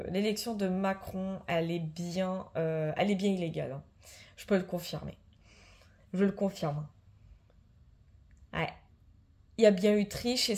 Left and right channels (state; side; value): identical; both; correlation 1.00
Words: Macron, elle est bien illégale, hein. Je peux le confirmer. Je le confirme. Ouais. Il y a bien eu triche et